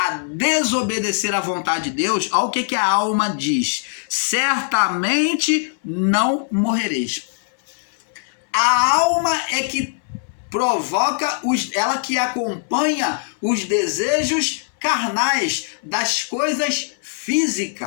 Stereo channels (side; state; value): right; silent; 65 dB below the other